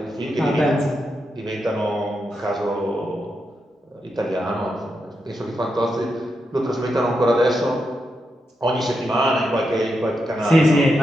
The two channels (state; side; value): normal; both; correlation 0.85